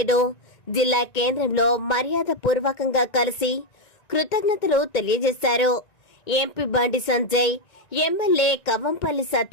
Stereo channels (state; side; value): late; right; 1.9 ms